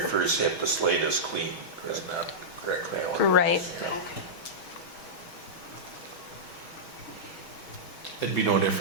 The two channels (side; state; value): right; late; 6.2 ms